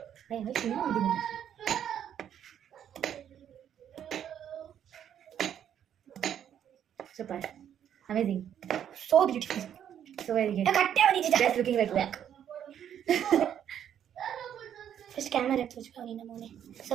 super amazing So beautiful. So very good ಕಟ್ಟೆ ಬಂದಿದ್ದೆ. Just looking like back first camera ತೋರಿಸ್ಕೊ ನಿನ್ನ ಮನೆ. ಸೊ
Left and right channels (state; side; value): quieter; left; 9.6 dB